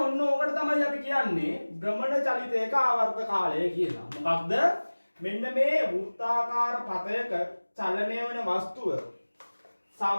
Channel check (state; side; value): inverted; both; correlation -1.00